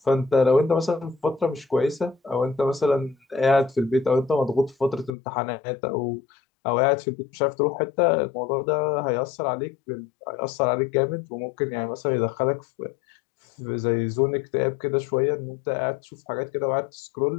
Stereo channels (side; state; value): right; drops out; at 5.1 s